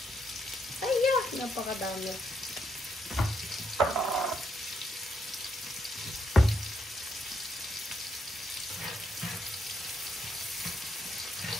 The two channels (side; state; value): both; normal; correlation 0.77